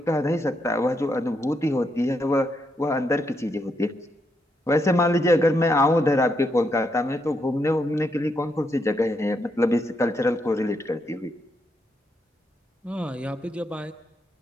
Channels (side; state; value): both; normal; correlation 0.79